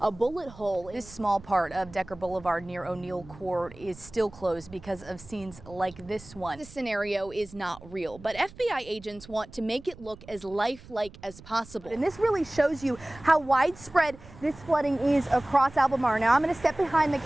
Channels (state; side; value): noise; right; rumble, 20 dB below the sound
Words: bullet hole. This small part of Decker Boulevard near O'Neill Court is still closed because of scenes like this one. This scenario is not real, but FBI agents want to make it look as lifelike as possible. And this really shows you how widespread this flooding is across Albemarle. Now I'm going to step behind the